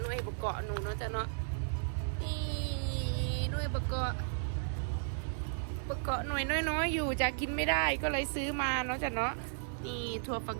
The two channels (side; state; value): left; silent; 55 dB below the other